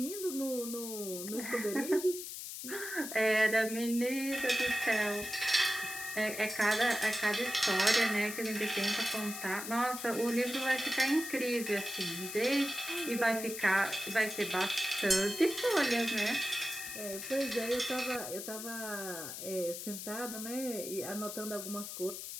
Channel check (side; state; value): left; noise; hiss, 8 dB below the sound